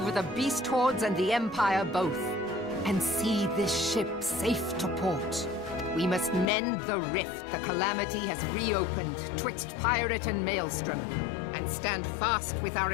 the beast hordes and the Empire both, and see this ship safe to port. We must mend the rift the calamity has reopened twixt pirate and maelstrom, and and stand fast with our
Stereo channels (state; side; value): drops out; right; at 6.5 s